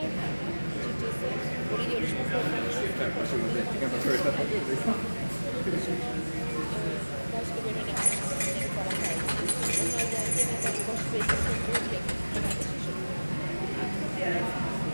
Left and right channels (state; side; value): inverted; both; correlation -1.00